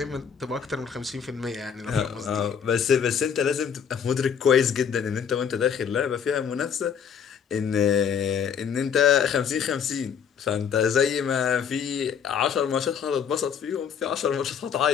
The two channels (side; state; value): right; quieter; 7.4 dB